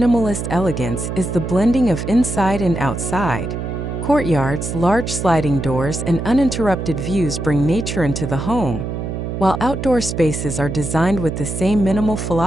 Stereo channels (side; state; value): right; noise; hum, 4 dB below the sound